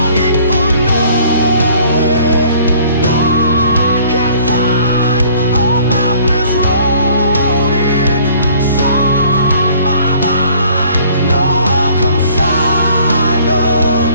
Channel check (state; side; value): inverted; both; correlation -0.56